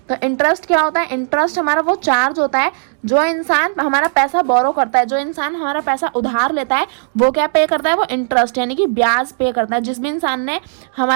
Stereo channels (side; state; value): left; silent; digital silence